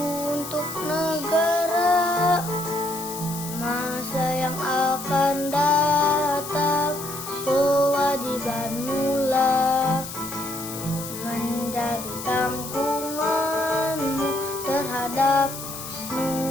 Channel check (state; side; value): noise; left; hiss, 10 dB below the sound